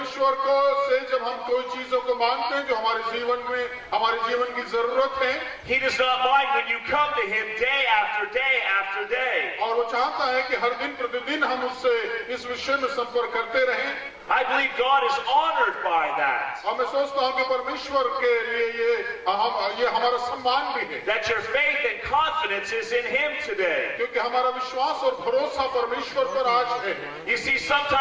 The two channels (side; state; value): both; identical; correlation 1.00